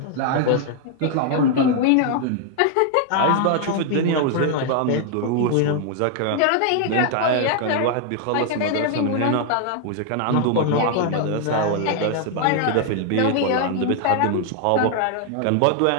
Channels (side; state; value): both; different; correlation 0.00